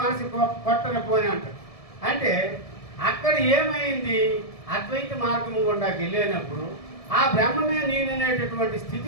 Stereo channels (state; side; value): late; right; 1.7 ms